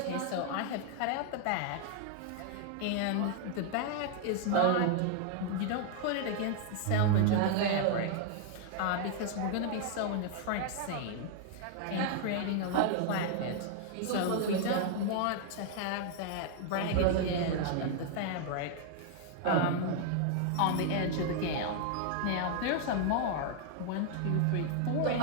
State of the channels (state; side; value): different; both; correlation 0.00